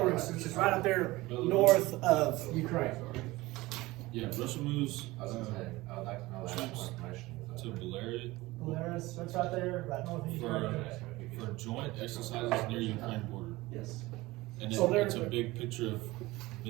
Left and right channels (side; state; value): left; quieter; 19.9 dB